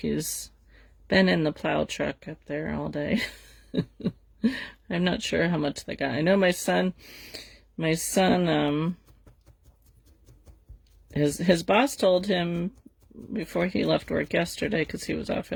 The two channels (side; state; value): both; identical; correlation 1.00